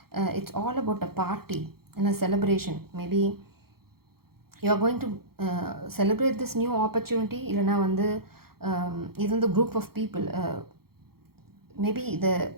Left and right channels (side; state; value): left; late; 0.94 ms